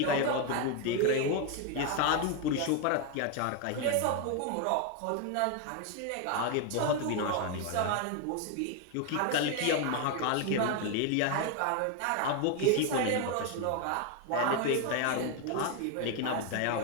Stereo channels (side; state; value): both; different; correlation 0.01